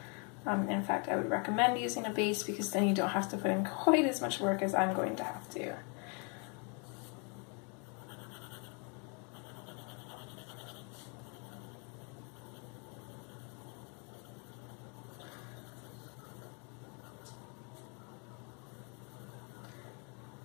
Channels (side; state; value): right; quieter; 36.1 dB